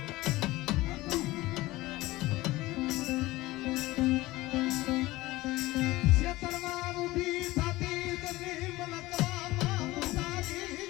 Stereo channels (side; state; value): right; quieter; 18.9 dB